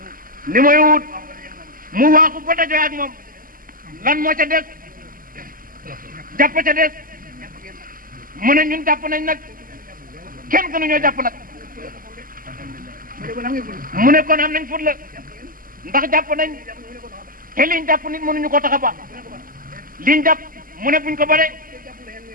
li mooy wut mu waaxu ba dajoo ak moom lan moo ca des jàpp ca des mu ne ñun jàpp nañ nag kenn gënu ñoo jàpp nag mu ne kon am nañ fut la ndax jàpp nañ te liñ jàpp nit mënuñu ko tax a baax liñ jàpp mu ne buñ ko bare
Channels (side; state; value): left; late; 0.41 ms